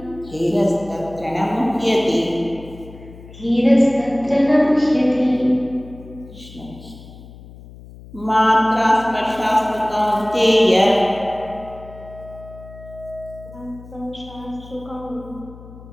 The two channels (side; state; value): left; noise; hum, 18 dB below the sound